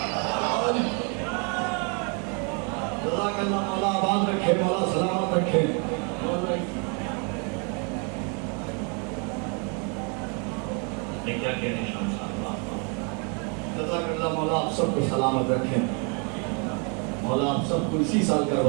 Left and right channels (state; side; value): quieter; left; 36.4 dB